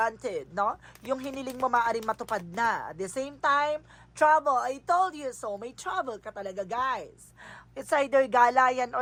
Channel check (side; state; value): both; identical; correlation 1.00